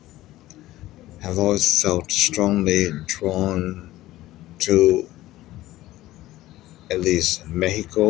have always felt strongly drawn to at least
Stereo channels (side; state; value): right; quieter; 16.1 dB